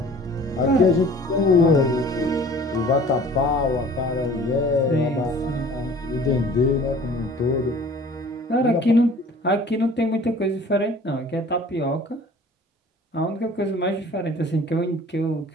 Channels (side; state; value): both; normal; correlation 0.48